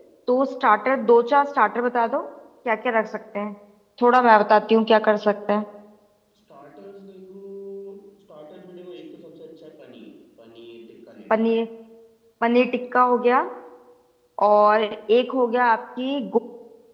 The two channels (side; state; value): both; identical; correlation 1.00